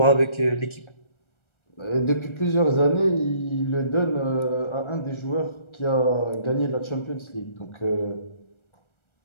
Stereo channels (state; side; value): late; right; 1.3 ms